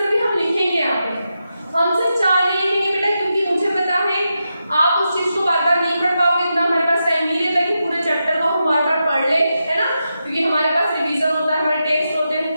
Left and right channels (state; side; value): inverted; both; correlation -0.88